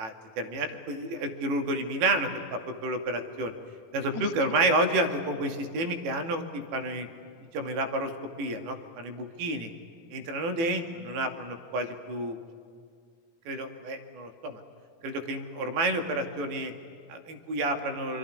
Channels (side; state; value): left; late; 18 ms